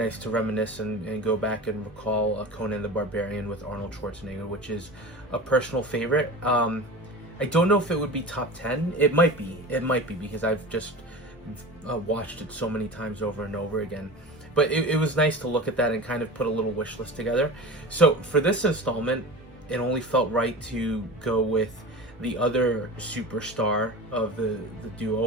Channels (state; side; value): normal; both; correlation 0.32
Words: to reminisce and go back and recall Conan the Barbarian with Arnold Schwarzenegger, which is a personal favorite. I don't know if it would be top 10. It might be. It might be because I've just watched it so many times over and over again. But it was nice to look at that and kind of put a little wish list together. So for this installment, it only felt right to go with the other superstar of the